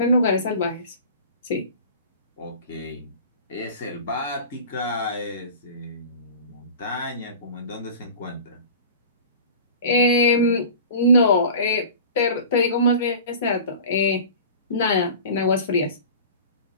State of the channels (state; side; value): inverted; both; correlation -0.39